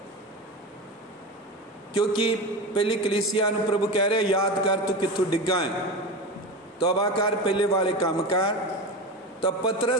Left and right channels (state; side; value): normal; both; correlation 0.25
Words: क्योंकि पहली कलीसिया नूं प्रभु कह रहे याद कर तू कित्थों डिग्गा है, तौबा कर पहले वाले काम कर। तो